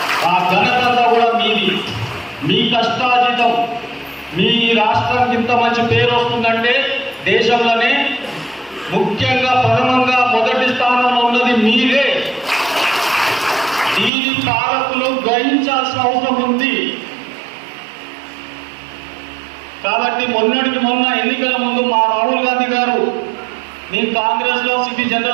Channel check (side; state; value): left; drops out; at 14.1 s